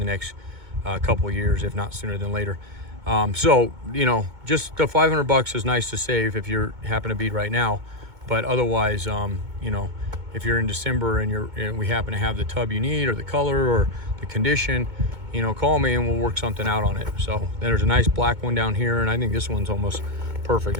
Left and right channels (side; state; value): left; late; 2.2 ms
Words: next couple of years, if not sooner than later. So, you know, just the $500 is nice to save if you happen to be right now. But otherwise, you know, if you're in December and we happen to have the tub you need, or the color, or the condition, you know, call me and we'll work something out on it. So there's a nice black one down here, and I think this one's almost perfect.